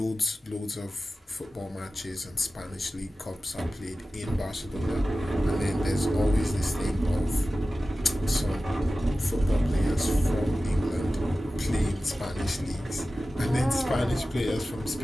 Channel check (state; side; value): normal; both; correlation 0.95